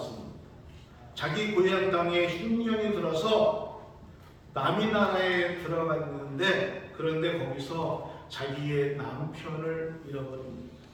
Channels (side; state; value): both; identical; correlation 1.00